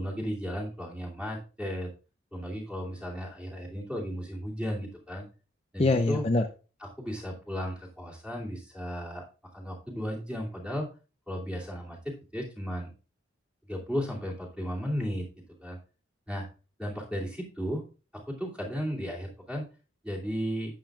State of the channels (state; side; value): normal; both; correlation 0.81